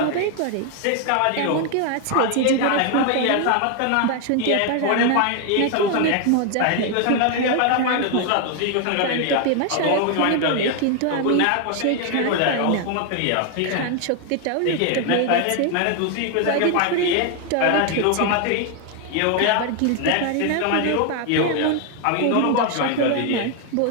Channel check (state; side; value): different; both; correlation 0.01